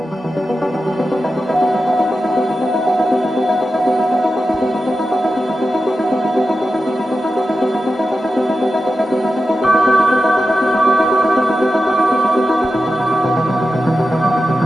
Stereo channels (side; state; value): both; normal; correlation 0.91